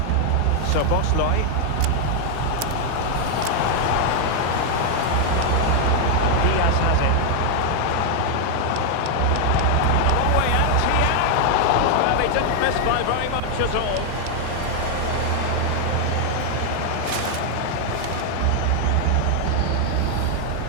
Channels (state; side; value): different; both; correlation 0.00